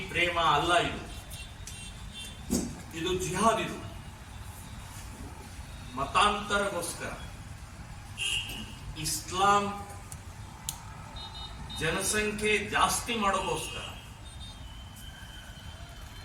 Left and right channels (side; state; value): both; identical; correlation 1.00